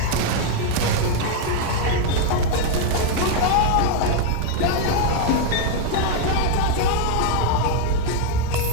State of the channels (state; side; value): different; both; correlation 0.00